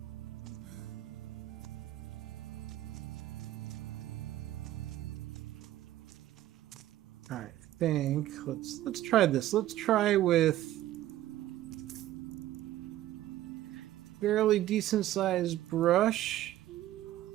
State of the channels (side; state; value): left; quieter; 14.0 dB